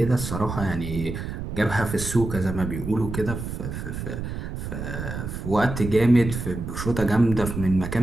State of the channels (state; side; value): noise; right; rumble, 6 dB below the sound